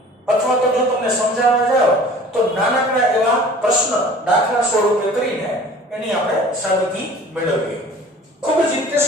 અથવા તો જો તમને સમજાવવા જાવ તો નાનકડા એવા પ્રશ્ન દાખલા સ્વરૂપે કરીને એની આપણે સાબિતી મેળવીએ. ખૂબ જ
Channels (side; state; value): both; normal; correlation 0.46